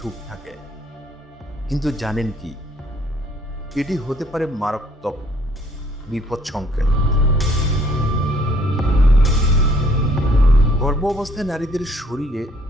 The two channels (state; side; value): normal; both; correlation 0.62